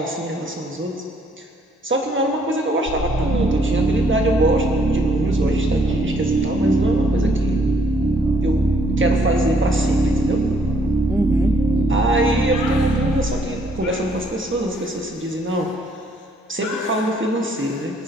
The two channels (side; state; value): both; normal; correlation 0.67